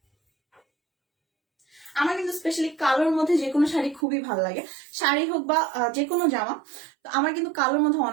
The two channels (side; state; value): left; drops out; at 4.0 s